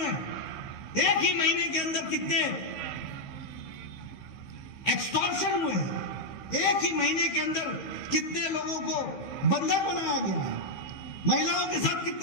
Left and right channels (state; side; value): late; right; 15 ms